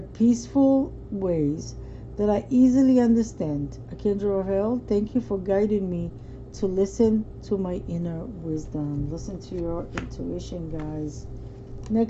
ways that I easily understand. Archangel Raphael, thank you for guiding me to listen to my inner wisdom. Listen to your intuition, guys.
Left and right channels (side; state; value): both; identical; correlation 1.00